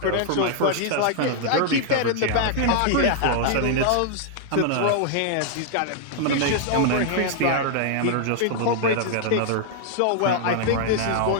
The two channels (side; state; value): both; different; correlation -0.01